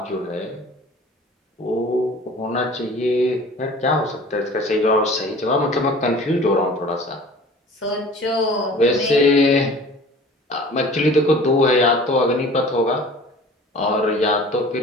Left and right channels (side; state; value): both; normal; correlation 0.45